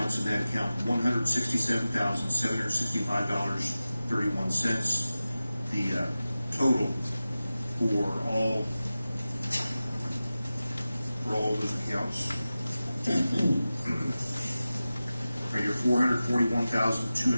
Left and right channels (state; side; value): inverted; both; correlation -0.95